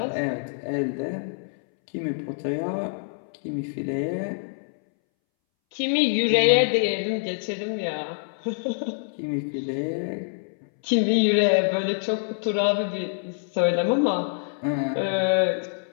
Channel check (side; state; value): right; silent; 61 dB below the other